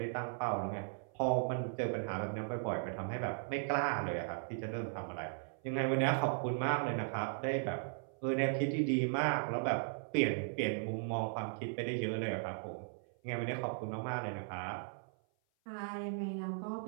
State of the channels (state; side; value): silent; left; 53 dB below the other